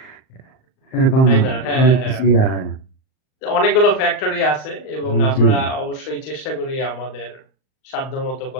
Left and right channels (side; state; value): right; late; 38 ms